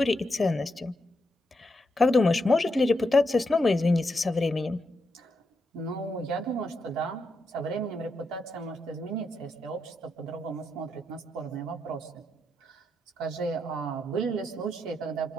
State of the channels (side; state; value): both; normal; correlation 0.83